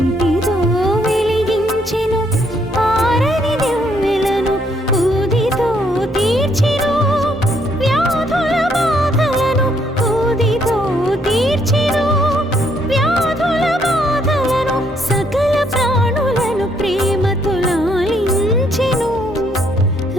వెలిగించెను ఆరని దివ్వెలను. ఊదితో తీర్చెను వ్యాధుల బాధలను, ఊదితో తీర్చెను వ్యాధుల బాధలను. సకల ప్రాణులను ప్రేమతో లాలించెను,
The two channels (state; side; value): normal; both; correlation 0.70